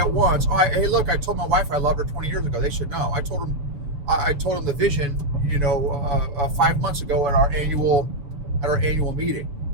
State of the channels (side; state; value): left; late; 7.0 ms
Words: once, oh, hey, look, I told my wife I loved her 20 years ago. They should know. I told them the vision, 5 months ago at our annual meeting.